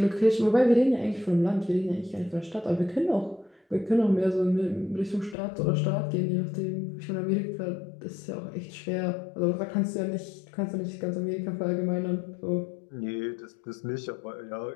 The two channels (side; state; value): right; drops out; at 5.4 s